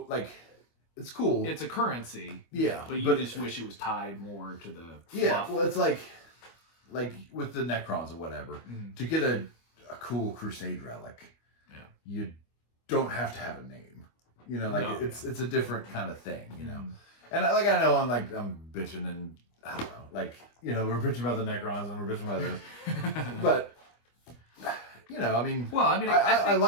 like, it's cool. It's a currency. Yeah. But you just wish it was tied more to the fluff. Well, it's like with the Necrons or whatever, to get a cool Crusade relic, you don't have to have a name. It's a different kind of thing, And I know I'm bitching, and I don't know, like, we're bitching about the Necrons and we're bitching about this. But I mean,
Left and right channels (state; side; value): late; right; 25 ms